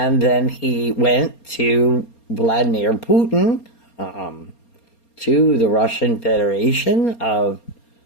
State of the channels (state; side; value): late; right; 4.3 ms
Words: then he went to Vladimir Putin, to the Russian Federation of